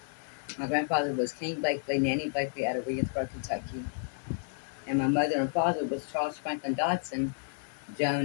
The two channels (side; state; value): right; silent; digital silence